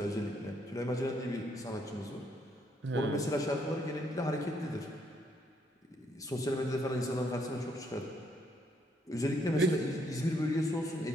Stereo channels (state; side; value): normal; both; correlation 0.72